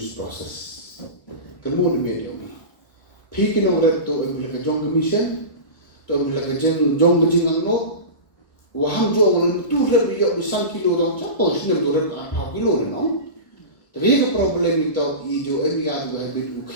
process. Kemudian medium. Pikin orang tu ambil kerjong mission, tu ambil kerjong berjingang lo. Waham jo orang tu lebih yok besar kilo dong. Siapa sini tu lebih 4 kilo ni no. Tapi ke problem itu ijo emiat berhabit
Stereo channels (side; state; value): right; late; 1.2 ms